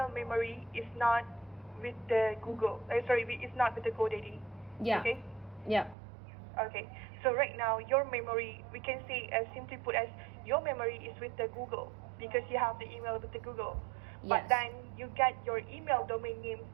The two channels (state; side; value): drops out; left; at 6.0 s